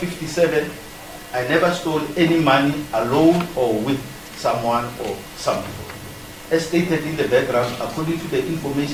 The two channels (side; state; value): both; identical; correlation 1.00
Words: I never stole any money alone or with someone or some people. As stated in the background, according to the